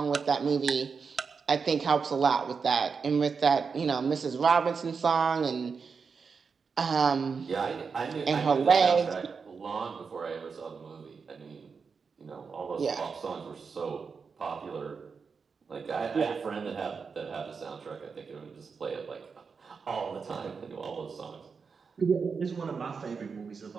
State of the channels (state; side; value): quieter; left; 5.4 dB